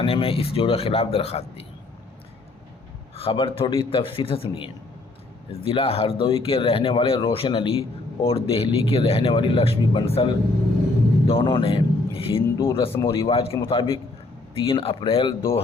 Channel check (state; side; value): quieter; right; 3.1 dB